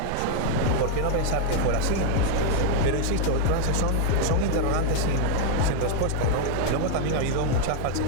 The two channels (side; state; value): both; different; correlation 0.00